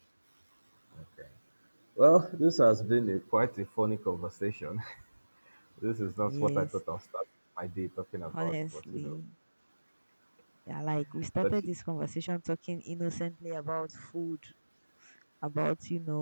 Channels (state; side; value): inverted; both; correlation -1.00